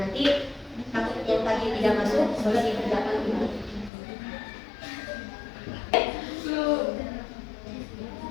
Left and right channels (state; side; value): drops out; right; at 3.9 s